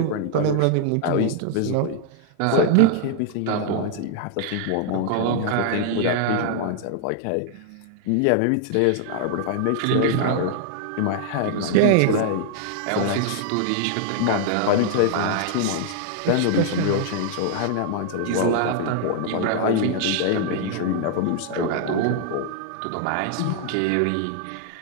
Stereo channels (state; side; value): different; both; correlation 0.00